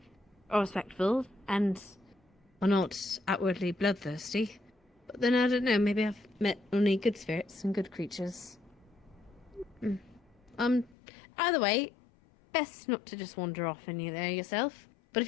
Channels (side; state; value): right; drops out; at 11.0 s